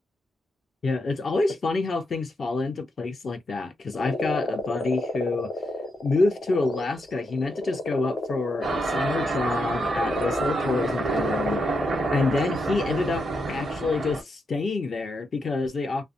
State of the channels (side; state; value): both; normal; correlation 0.83